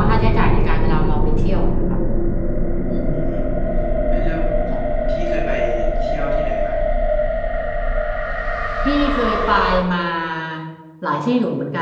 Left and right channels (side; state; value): both; identical; correlation 1.00